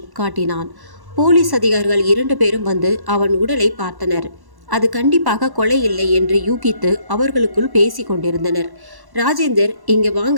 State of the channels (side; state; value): left; late; 1.1 ms